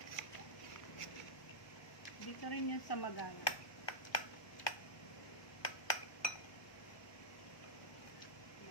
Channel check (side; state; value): right; late; 1.2 ms